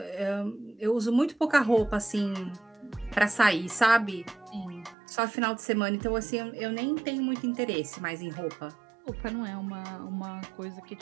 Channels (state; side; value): drops out; left; at 5.0 s